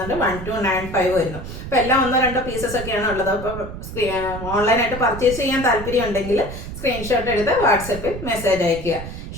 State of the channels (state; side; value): noise; right; rumble, 9 dB below the sound